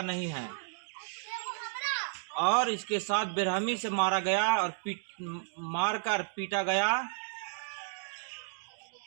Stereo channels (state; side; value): silent; left; digital silence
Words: नहीं है, और इसके साथ बेरहमी से मारा गया और मारकर पीटा गया।